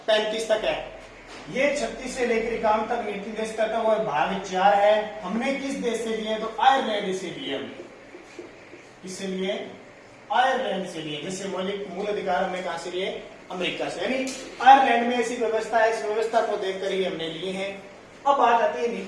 35 तक है। ये 36 से लेकर 51 तक नीति निर्देशक तत्व और भाग 4 है। हमने किस देश से लिए? तो आयरलैंड से लिए हमने। किससे लिए? आयरलैंड से लिए। जैसे मौलिक मूल अधिकार हमने कहां से लिए? अमेरिका से। यानी आयरलैंड में ऐसी व्यवस्था है, इस व्यवस्था को देखकर ही हमने लिए हैं। अब बात आती है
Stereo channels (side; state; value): both; identical; correlation 1.00